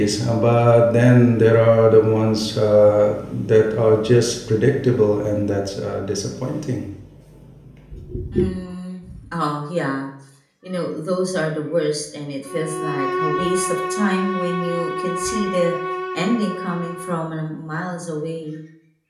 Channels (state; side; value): identical; both; correlation 1.00